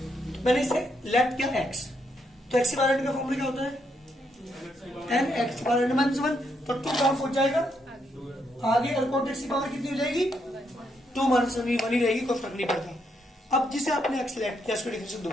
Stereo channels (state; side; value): normal; both; correlation 0.77